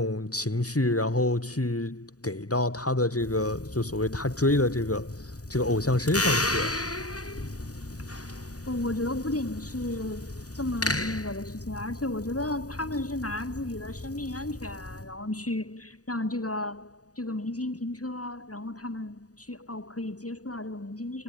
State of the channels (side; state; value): right; late; 0.67 ms